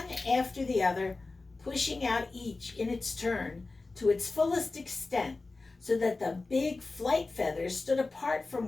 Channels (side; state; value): right; quieter; 3.5 dB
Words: after the other, pushing out each in its turn to its fullest extent, so that the big flight feathers stood apart